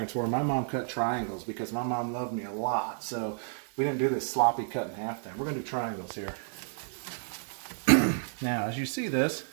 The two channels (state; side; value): silent; left; digital silence